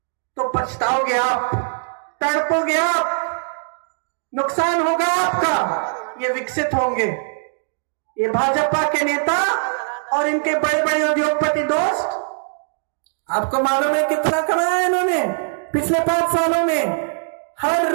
तो पछताओगे आप, तड़पोगे आप, नुकसान होगा आपका। ये विकसित होंगे, ये भाजपा के नेता और इनके बड़े बड़े उद्योगपति दोस्त। आपको मालूम है कितना कमाया इन्होंने पिछले 5 सालों में? हर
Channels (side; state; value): left; silent; digital silence